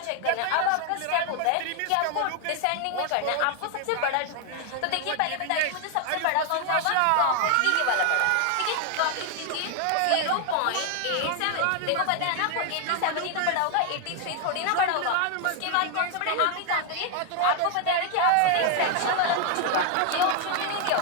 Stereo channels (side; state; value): both; different; correlation 0.01